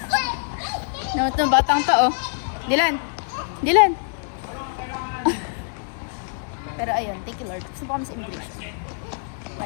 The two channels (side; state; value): right; silent; digital silence